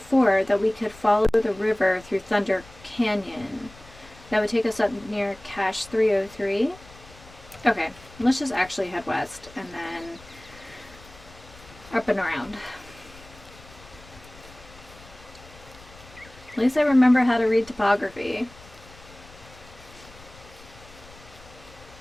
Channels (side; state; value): left; noise; rumble, 21 dB below the sound